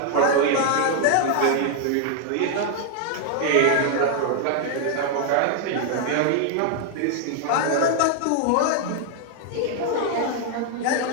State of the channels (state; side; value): different; both; correlation 0.00